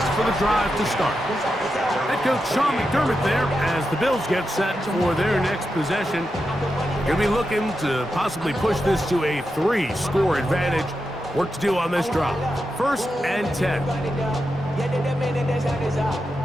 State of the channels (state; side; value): normal; both; correlation 0.88